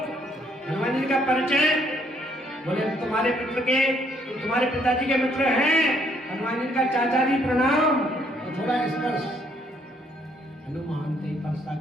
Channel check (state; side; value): normal; both; correlation 0.68